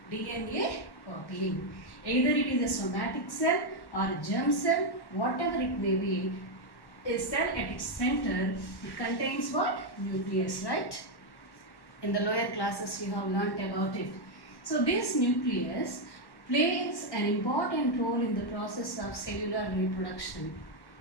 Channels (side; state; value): right; late; 1.1 ms